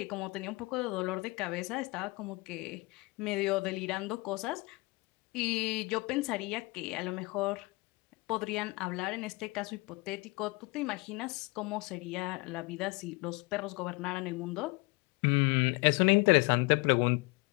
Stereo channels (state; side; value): quieter; right; 25.0 dB